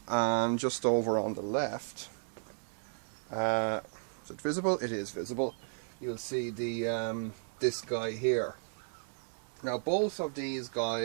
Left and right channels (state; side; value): silent; left; 55 dB below the other